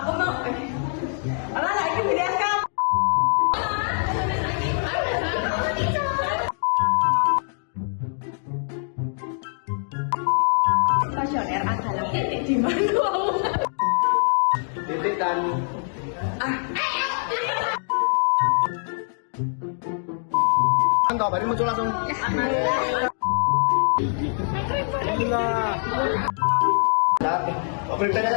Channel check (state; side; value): silent; right; 58 dB below the other